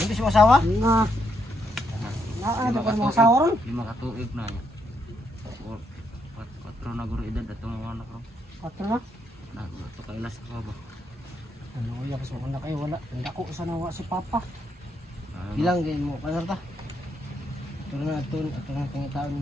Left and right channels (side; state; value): both; normal; correlation 0.77